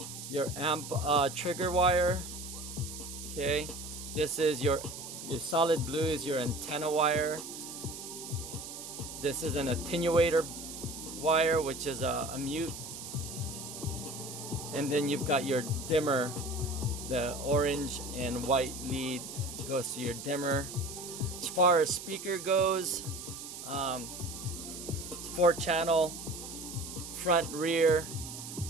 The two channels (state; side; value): noise; right; hiss, 10 dB below the sound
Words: trigger wire. Okay, this is your solid blue is your antenna wire. This is an attenuator wire, which is a mute. And then you've got your dimmer. The orange and white lead goes to your dimmer. As far as speaker goes, it's 4-channel, front, rear.